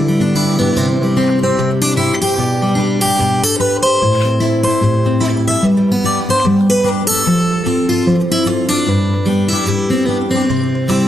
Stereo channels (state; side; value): normal; both; correlation 0.85